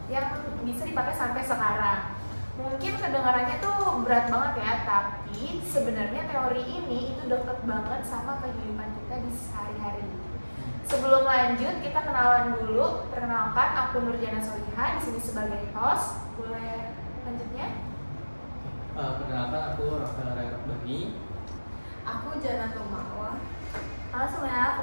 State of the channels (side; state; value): both; inverted; correlation -1.00